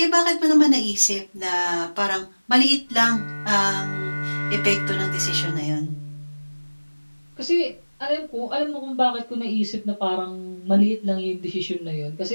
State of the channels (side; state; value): both; inverted; correlation -1.00